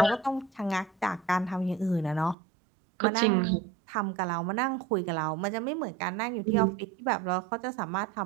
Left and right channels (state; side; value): drops out; left; at 2.4 s